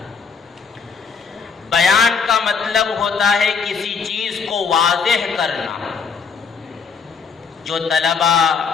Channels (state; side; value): quieter; right; 5.7 dB